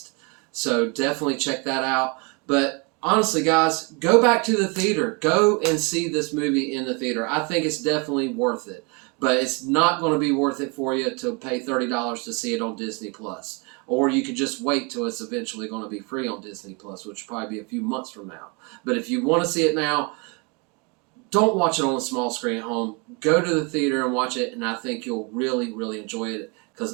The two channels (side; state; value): left; quieter; 31.1 dB